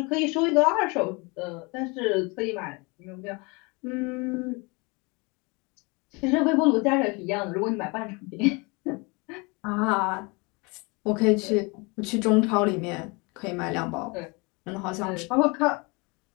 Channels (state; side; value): quieter; right; 28.3 dB